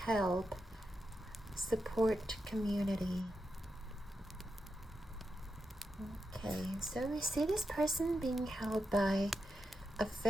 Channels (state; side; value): normal; both; correlation 0.87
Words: help, support community. Okay, so we see this person being held by a